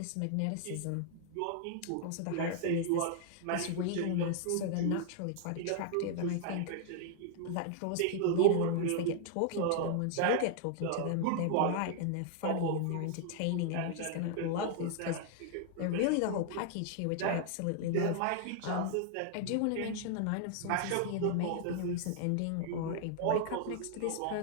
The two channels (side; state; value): both; different; correlation -0.01